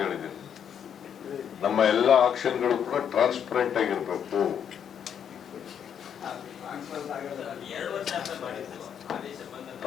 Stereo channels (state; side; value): quieter; right; 8.4 dB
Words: ಹೇಳಿದ್ದೀನಿ. ನಮ್ಮ ಎಲ್ಲ ಆಕ್ಷನ್ಗಳು ಕೂಡ ಟ್ರಾನ್ಸ್ಪರೆಂಟ್ ಆಗಿರ್ಬೇಕು.